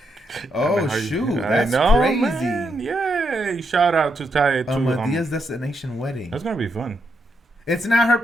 Oh, I mean, shoot. I That's know, crazy. man. Yay. Shout out to Ty. Medea's Destination Wedding. That's going to be fun. It's not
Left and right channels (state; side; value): normal; both; correlation 0.80